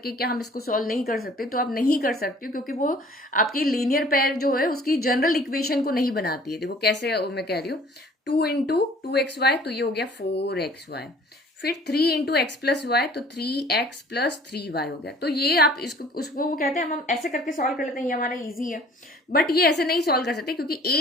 क्या हम इसको सॉल्व नहीं कर सकते। तो आप नहीं कर सकते क्योंकि वो आपकी लीनियर पेयर जो है उसकी जनरल इक्वेशन को नहीं बनाती है। देखो कैसे मैं कह रही हूँ, 2 इंटू 2xy, तो ये हो गया 4xy। फिर 3 इंटू एक्स प्लस वाई, तो 3x प्लस 3y हो गया। तो ये आप इसको उसको वो कहते हैं, हम ऐसे करके सॉल्व कर लेते हैं, ये हमारा इजी है। बट ये ऐसे नहीं सॉल्व कर सकते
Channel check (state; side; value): normal; both; correlation 0.52